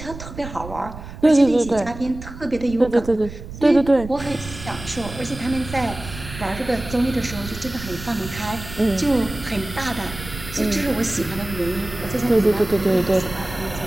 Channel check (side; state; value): right; noise; rumble, 12 dB below the sound